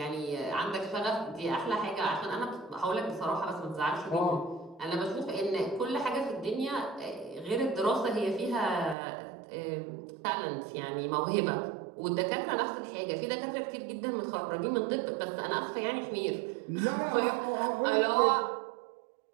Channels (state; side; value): drops out; left; at 9.0 s